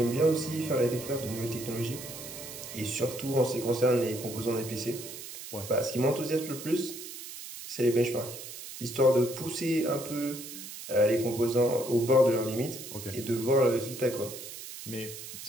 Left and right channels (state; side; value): noise; right; hiss, 11 dB below the sound